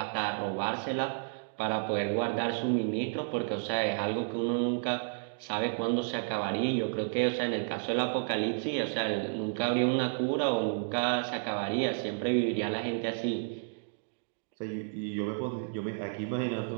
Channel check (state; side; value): silent; left; digital silence